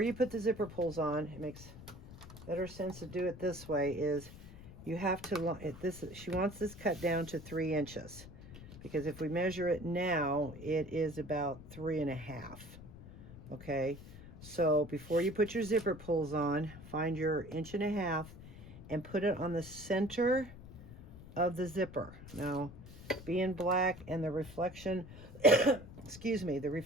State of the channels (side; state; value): left; noise; rumble, 16 dB below the sound